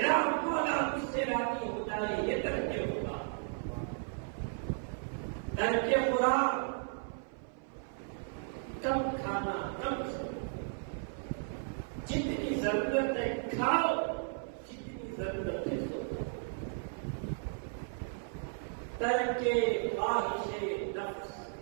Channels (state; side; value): silent; left; 55 dB below the other